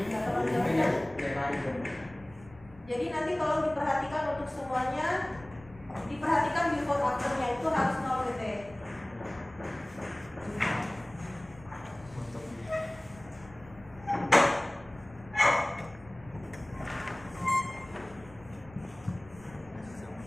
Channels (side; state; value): left; noise; rumble, 22 dB below the sound